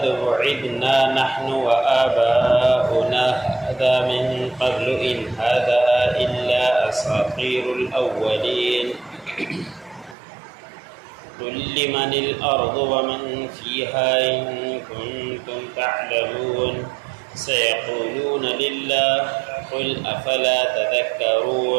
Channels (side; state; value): left; drops out; at 10.2 s